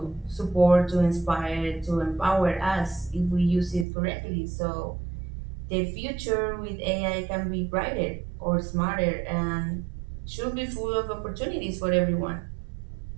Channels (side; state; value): left; drops out; at 3.9 s